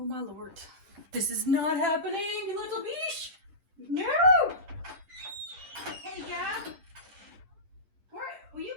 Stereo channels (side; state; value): left; late; 10 ms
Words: my lord. This is not happening, you little beesh! No! Hey, Gab. Will you